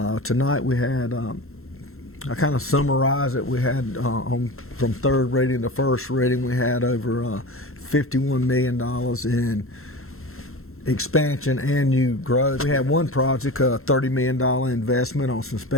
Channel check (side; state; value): right; late; 0.62 ms